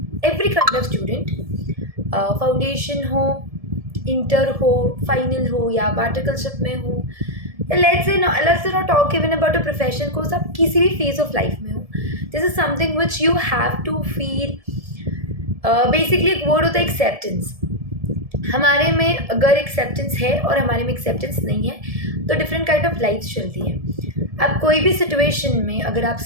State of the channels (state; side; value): late; left; 1.7 ms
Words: every kind of student. Foundation हो, inter हो, final हो या पार्टिकलशिप में हो, let's say not talk even about a profession course, आप किसी भी phase of life में हो. This is something which you have to feel. Basically एक वर्ड होता है एक्सेप्टेंस. हमारे में अगर एक्सेप्टेंस है और हमारे में एक्सेप्टेंस नहीं है तो डिफरेंट काइंड ऑफ लाइफ चलती है. अब कोई भी सिचुएशन में अगर आप